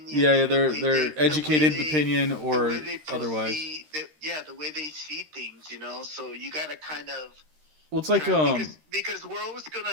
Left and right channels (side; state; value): left; late; 13 ms